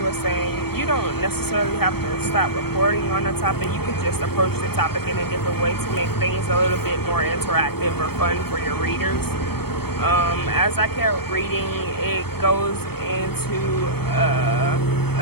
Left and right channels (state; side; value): late; right; 0.96 ms